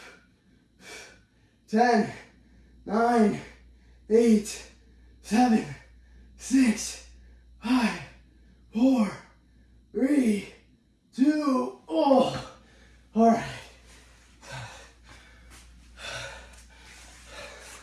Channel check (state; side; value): identical; both; correlation 1.00